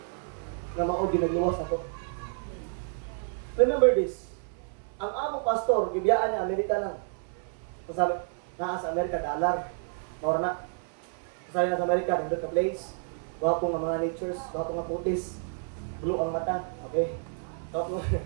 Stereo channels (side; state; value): left; silent; 58 dB below the other